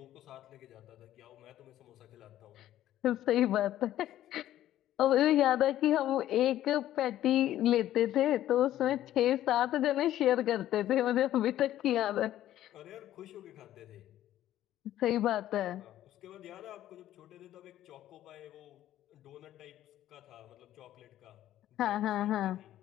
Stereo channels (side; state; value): right; quieter; 12.9 dB